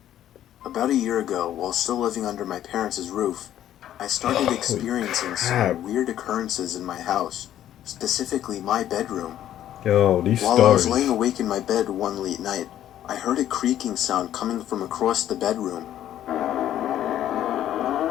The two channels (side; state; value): right; quieter; 11.7 dB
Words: About a year ago, while still living under my parents' roof, I started experiencing some weird occurrences in my house, specifically my bedroom. Yo, these While stories. I was laying awake in my bed one late night, I heard a creaking sound coming from across the bedroom.